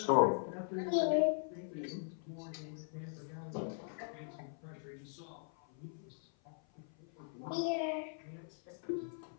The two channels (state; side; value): silent; right; 51 dB below the other